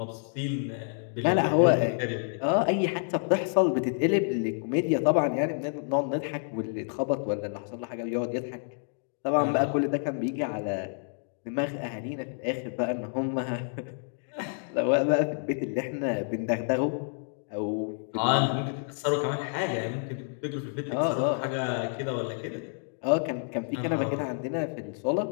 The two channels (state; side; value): silent; right; 59 dB below the other